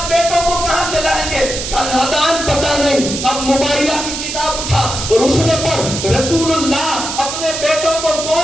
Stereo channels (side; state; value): right; noise; hiss, 5 dB below the sound